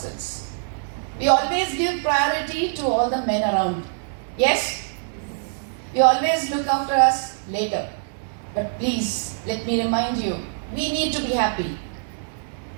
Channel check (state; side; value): silent; left; digital silence